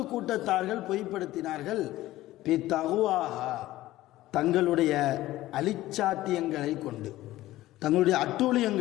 கூட்டத்தார்கள் பொய்ப்படுத்தினார்கள். பி தகுவாஹா, தங்களுடைய அலிச்சாட்டியங்களை கொண்டு, தங்களுடைய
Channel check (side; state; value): right; quieter; 16.0 dB